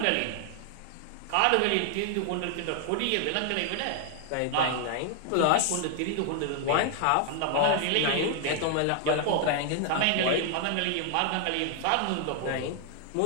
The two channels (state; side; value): different; both; correlation 0.00